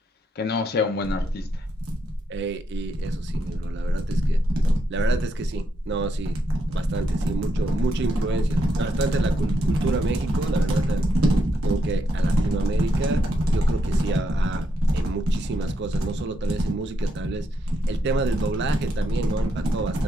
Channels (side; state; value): both; normal; correlation 0.78